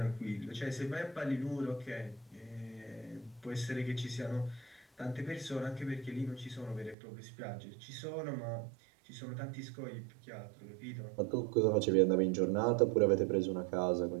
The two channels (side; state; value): left; drops out; at 7.0 s